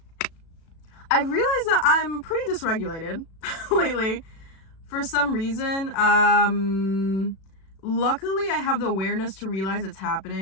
I realized that I'm pretty dysregulated lately for some reason. Luckily, I have the awareness to realize it's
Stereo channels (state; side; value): late; right; 36 ms